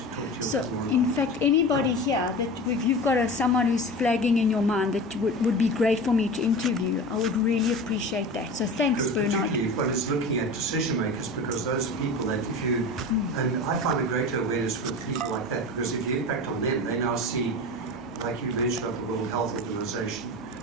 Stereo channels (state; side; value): normal; both; correlation 0.31